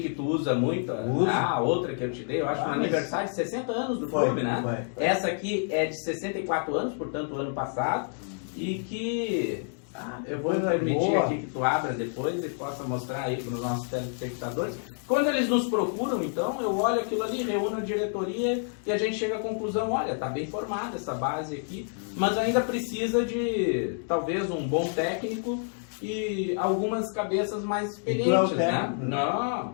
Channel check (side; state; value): right; silent; 59 dB below the other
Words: que tu usa muito. A outra que eu te dei, eu acho, no aniversário de 60 anos do clube, né? Foi. Essa aqui é de 64 anos, portanto, ano passado. E que... eu vou permitir aqui que tu abra depois e possa mostrar aí para os nossos telespectadores. Quando eles nos procuram, então, eu olho aquilo ali, reúno a diretoria e a gente chega à conclusão, olha, tá bem formada essa base aqui, mas ainda precisa de, talvez, um bom técnico e algumas cabeças mais experientes, né? Não,